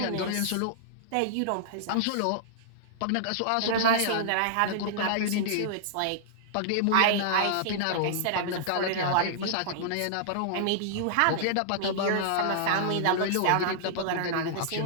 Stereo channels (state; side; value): different; both; correlation -0.01